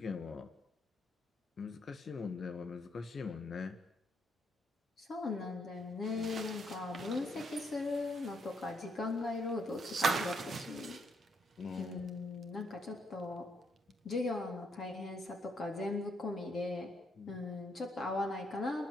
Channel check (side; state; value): both; normal; correlation 0.74